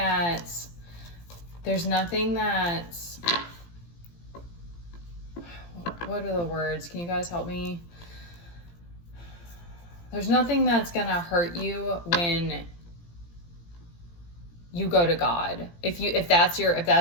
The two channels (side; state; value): right; late; 17 ms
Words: what are the words? Can you guys help me? There's nothing that's going to hurt you when you go to God. If that's